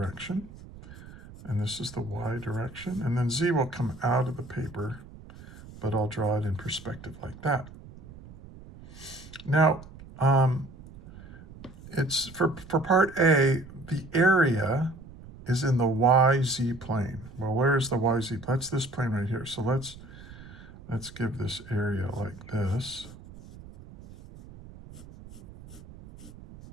and this is the Y direction, and then Z will come out of the paper, but I'll draw it in perspective like that. Now, it's for part A, the area is in the YZ plane. Well, where is the YZ? That's this plane right here. So let's give this area like this.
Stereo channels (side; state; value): right; noise; rumble, 18 dB below the sound